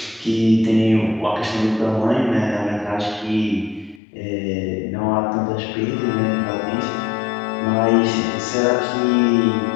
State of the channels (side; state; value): right; drops out; at 4.0 s